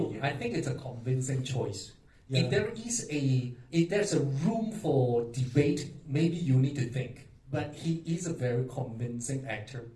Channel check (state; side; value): identical; both; correlation 1.00